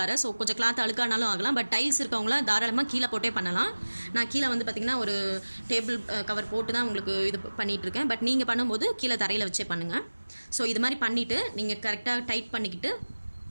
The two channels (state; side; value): inverted; both; correlation -1.00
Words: ஸோ கொஞ்சம் கிளாத் அழுக்கானாலும் ஆகலாம். பட் டைல்ஸ் இருக்கவங்களாம் தாராளமாக கீழே போட்டே பண்ணலாம். நான் கீழே வந்து பார்த்திங்கன்னா ஒரு டேபிள் கவர் போட்டு தான் உங்களுக்கு இது பண்ணிகிட்ருக்கேன். பட் நீங்கள் பண்ணும்போது கீழே தரையில் வச்சே பண்ணுங்கள். ஸோ இது மாதிரி பண்ணிவிட்டு நீங்கள் கரெக்டாக டைட் பண்ணிக்கிட்டு